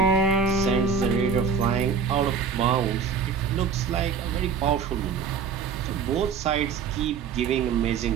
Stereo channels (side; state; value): left; quieter; 6.0 dB